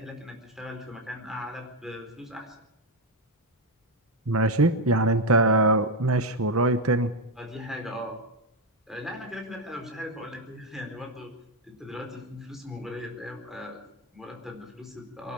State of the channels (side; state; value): both; normal; correlation 0.06